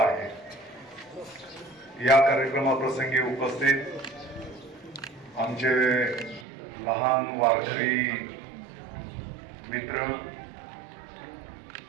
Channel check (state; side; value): drops out; left; at 6.5 s